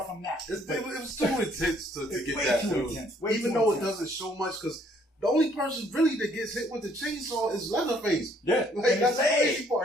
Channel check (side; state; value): both; normal; correlation 0.64